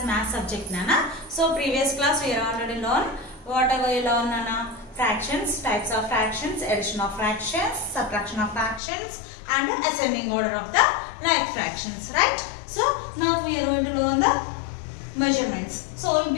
math subject, Nana. So previous class we are already learned whatever we learn, Nana. Fractions, types of fractions, addition of fractions, subtraction of fractions, and the ascending order of the like fractions, right? So now we are going to learn the measurements. So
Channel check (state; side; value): drops out; right; at 8.8 s